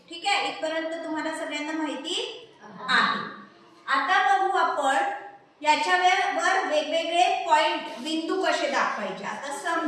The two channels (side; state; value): both; identical; correlation 1.00